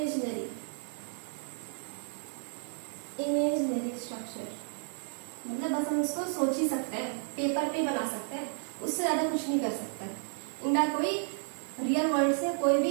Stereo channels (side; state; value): left; silent; 55 dB below the other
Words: स्ट्रक्चर, मतलब बस हम इसको सोच ही सकते हैं, पेपर पे बना सकते हैं, उससे ज्यादा कुछ नहीं कर सकते। इनका कोई रियल वर्ल्ड से कोई